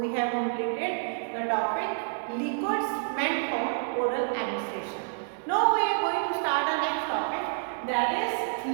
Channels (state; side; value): silent; left; digital silence